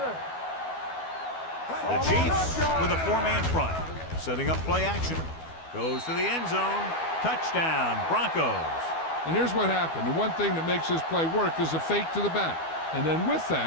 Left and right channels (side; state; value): right; late; 12 ms